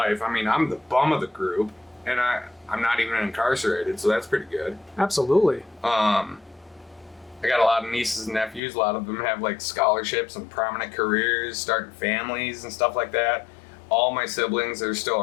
I mean, I'm the bum of the group, and I'm not even incarcerated, so that's pretty good. Absolutely. I got a lot of nieces and nephews. A lot of them have like scholarships and prominent careers, starting families and stuff like that. All my siblings that are still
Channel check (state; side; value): drops out; right; at 8.6 s